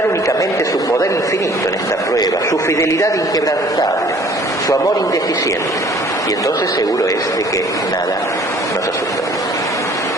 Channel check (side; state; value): both; normal; correlation 0.54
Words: únicamente su poder infinito en esta prueba, su fidelidad inquebrantable, su amor indeficiente, y entonces seguro es de que nada nos asusta.